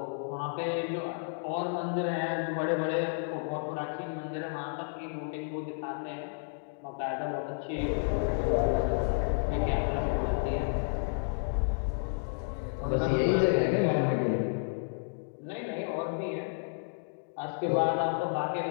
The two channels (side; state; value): right; silent; digital silence